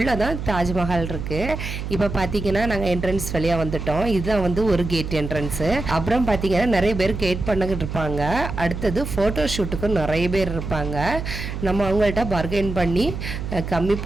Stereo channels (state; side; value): noise; right; hum, 6 dB below the sound